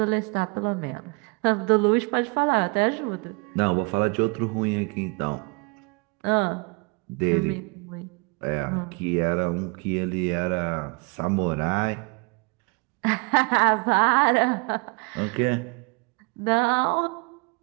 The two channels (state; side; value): quieter; left; 30.5 dB